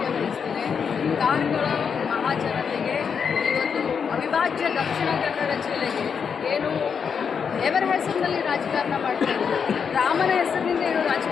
ಬಯಸ್ತೇನೆ, ಕಾರ್ಕಳ ಮಹಾಜನತೆಗೆ ಇವತ್ತು ಅವಿಭಾಜ್ಯ ದಕ್ಷಿಣ ಕನ್ನಡ ಜಿಲ್ಲೆಗೆ ಏನು ದೇವರ ಹೆಸರಿನಲ್ಲಿ ರಾಜಕಾರಣ ಮಾಡ್ತಾ ಇದ್ದಾರೆ, ರಾಮನ ಹೆಸರಿನಿಂದ ಏನು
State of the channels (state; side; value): quieter; right; 6.5 dB